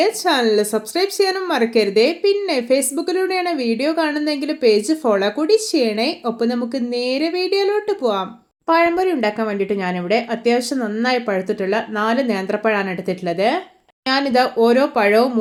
ചാനൽ സബ്സ്ക്രൈബ് ചെയ്യാനും മറക്കരുതേ. പിന്നെ ഫേസ്ബുക്കിലൂടെയാണ് വീഡിയോ കാണുന്നതെങ്കിൽ പേജ് ഫോളോ കൂടി ചെയ്യണേ. ഒപ്പം നമുക്ക് നേരെ വീഡിയോയിലോട്ട് പോവാം. പഴംപൊരി ഉണ്ടാക്കാൻ വേണ്ടിയിട്ട് ഞാനിവിടെ അത്യാവശ്യം നന്നായി പഴുത്തിട്ടുള്ള 4 നേന്ത്രപ്പഴമാണ് എടുത്തിട്ടുള്ളത്. ഞാനിത് ഓരോ പഴവും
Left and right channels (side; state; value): both; identical; correlation 1.00